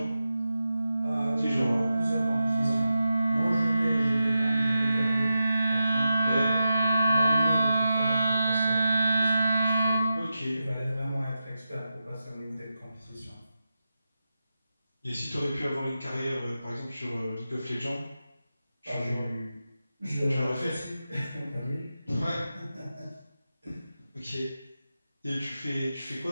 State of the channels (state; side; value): inverted; both; correlation -0.91